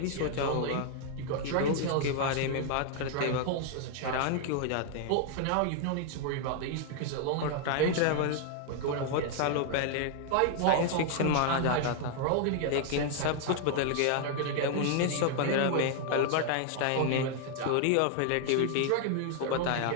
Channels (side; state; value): both; different; correlation 0.00